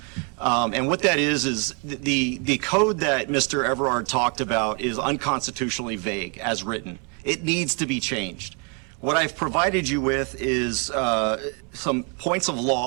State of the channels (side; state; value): left; quieter; 36.7 dB